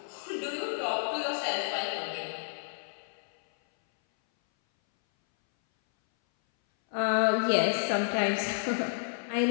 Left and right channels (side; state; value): right; silent; 58 dB below the other